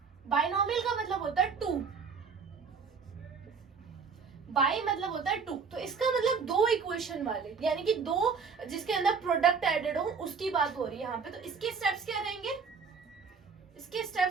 बाइनोमियल का मतलब होता है 2, बाई मतलब होता है 2। तो इसका मतलब 2 इक्वेशन वाले, यानी कि 2 जिसके अंदर प्रोडक्ट एडेड हो उसकी बात हो रही है यहाँ पे। तो इसके स्टेप्स क्या रहेंगे, इसके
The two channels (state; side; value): quieter; left; 5.6 dB